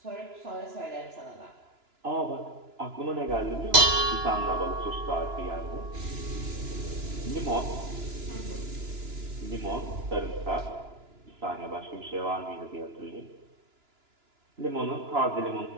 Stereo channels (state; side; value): late; left; 2.9 ms